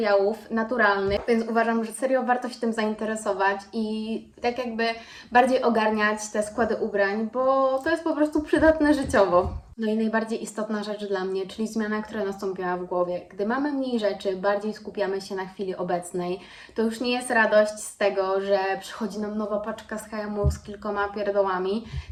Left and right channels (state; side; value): identical; both; correlation 1.00